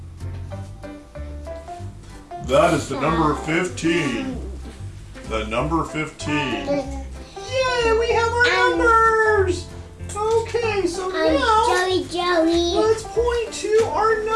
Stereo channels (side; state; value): both; identical; correlation 1.00